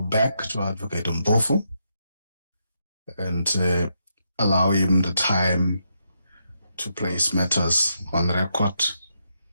back to Advocate Mpofu and allow him the time to place matters on record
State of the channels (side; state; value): both; inverted; correlation -0.81